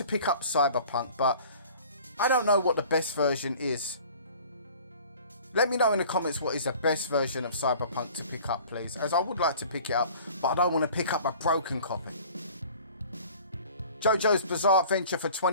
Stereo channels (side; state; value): both; inverted; correlation -0.47